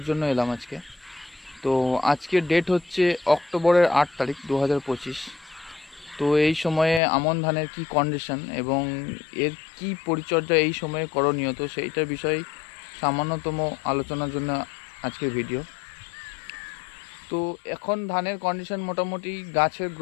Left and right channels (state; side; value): drops out; right; at 7.0 s